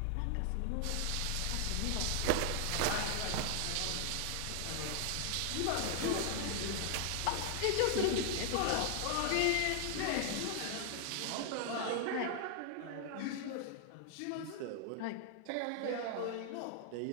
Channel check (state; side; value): different; both; correlation 0.00